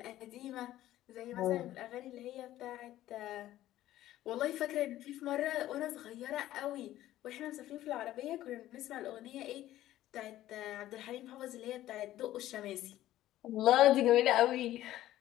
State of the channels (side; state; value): right; quieter; 14.1 dB